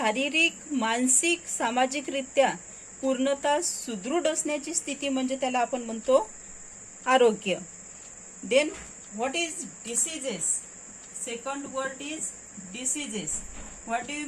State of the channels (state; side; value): identical; both; correlation 1.00